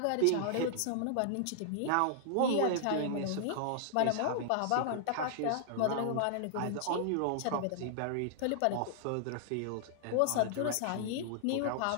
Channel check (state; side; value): different; both; correlation -0.01